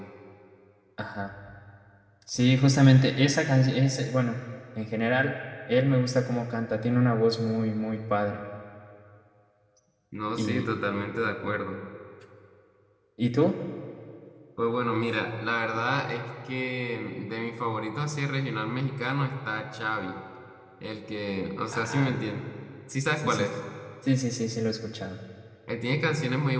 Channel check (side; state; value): both; identical; correlation 1.00